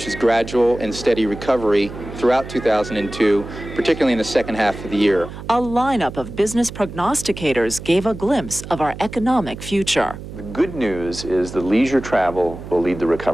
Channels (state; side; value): noise; right; hum, 12 dB below the sound